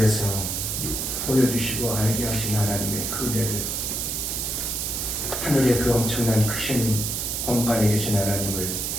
보여주시고 알게 하신 하나님의 그 은혜를, 하늘의 그 엄청난 크신 공간에 계신 하나님을,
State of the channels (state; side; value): noise; right; hiss, 2 dB below the sound